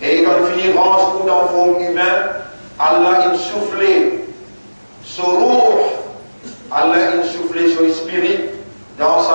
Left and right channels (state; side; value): inverted; both; correlation -1.00